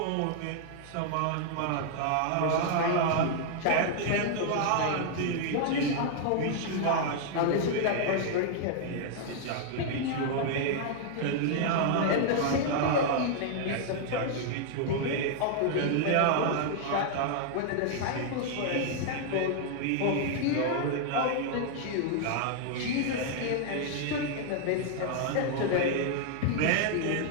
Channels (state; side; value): different; both; correlation 0.00